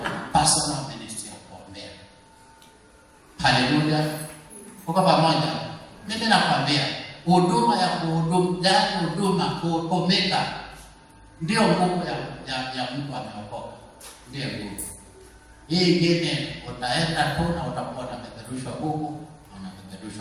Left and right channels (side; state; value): both; identical; correlation 1.00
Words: personal ministry ya kuombea. Haleluya. Uko pamoja? Mimi nakwambia huduma ya kutumika ndio nguvu ya mtu ameokoka. Ndio nguvu. Hii ingine utaenda tu na utakuwa unapeperushwa huku na